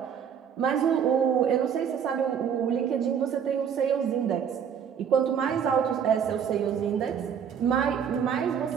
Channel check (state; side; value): quieter; left; 7.8 dB